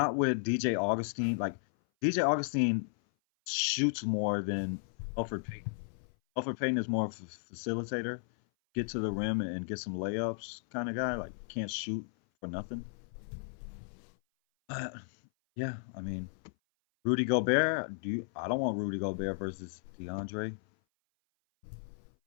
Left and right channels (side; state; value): right; silent; 55 dB below the other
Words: with DJ Augustine. Like, DJ Augustine shoots more than Alfred Payton. Alfred Payton is more of a facilitator, get to the rim and get some layups kind of guy. Like, can't shoot for nothing. Yeah, I mean, Rudy Gobert. I don't want Rudy Gobert versus DeAndre,